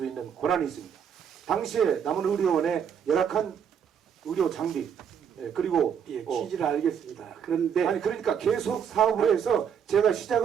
있는 권한이 있습니다. 당시에 남원의료원의 열악한 의료 장비 그리고 예, 취지를 알겠습니다. 그런데 아니 그러니까 계속 사업을 해서 제가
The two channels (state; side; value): quieter; left; 7.9 dB